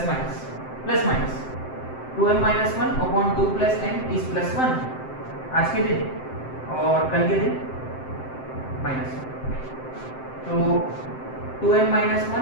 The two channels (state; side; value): late; right; 7.7 ms